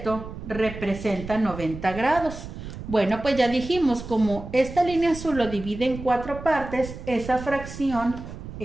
representa 90 grados. Bueno, pues ya dijimos, como esta línea azul lo divide en 4 partes, esa fracción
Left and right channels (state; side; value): noise; right; rumble, 11 dB below the sound